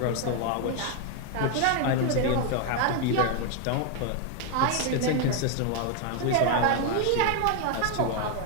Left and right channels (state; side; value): different; both; correlation 0.01